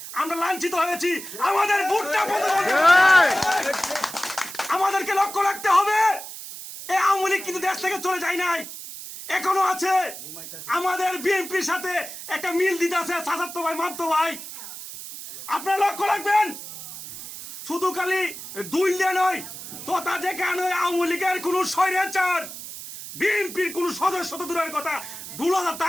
আমরা লাঞ্ছিত হয়েছি। আমাদের ভোটটা আমাদেরকে লক্ষ্য রাখতে হবে। এই আওয়ামী লীগ কিন্তু দেশ থেকে চলে যায় নাই, এখনো আছে। আমাদের বিএনপির সাথে একটা মিল দিতে আছে চাচাতো ভাই মামতো ভাই, আপনারা লক্ষ্য রাখবেন। শুধু খালি দুইলে নয়, তোতা যেখানে আওয়ামী লীগের কোন স্বৈরাচার বিএনপির কোন সদস্য তো দূরের কথা 2,000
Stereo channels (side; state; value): right; noise; hiss, 11 dB below the sound